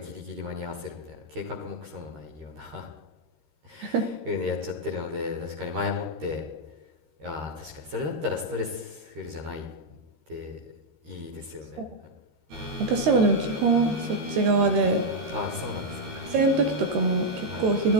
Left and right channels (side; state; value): left; late; 13 ms